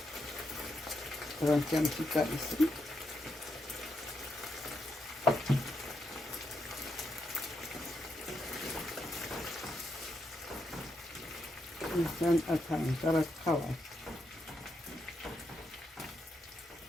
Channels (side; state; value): both; normal; correlation 0.82